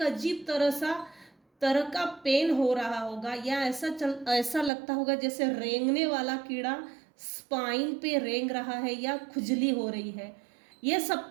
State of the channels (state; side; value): drops out; left; at 4.7 s